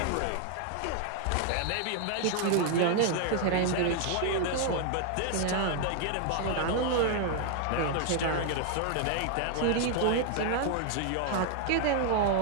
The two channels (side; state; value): both; different; correlation 0.00